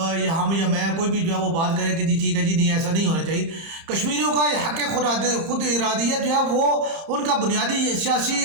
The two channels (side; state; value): left; late; 30 ms